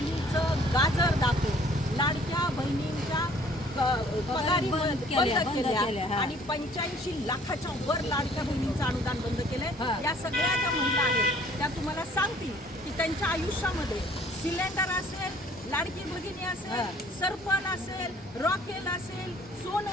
गाजर दाखवून लाडक्या बहिणींच्या पगारी बंद केल्या आणि 85 लाखाच्या वर लाडक्या बहिणींचं अनुदान बंद केलंय। या सगळ्या ज्या महिला आहेत त्या तुम्हाला सांगतील की त्यांच्या आयुष्यामध्ये सिलेंडर असेल, लाडकी भगिनी असेल, सरपण असेल, रॉकेल असेल,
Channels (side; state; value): both; normal; correlation 0.57